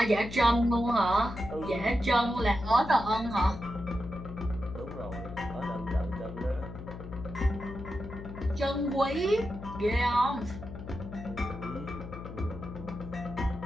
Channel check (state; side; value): noise; left; hum, 11 dB below the sound